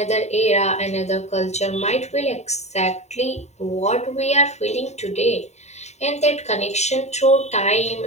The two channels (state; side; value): late; right; 0.32 ms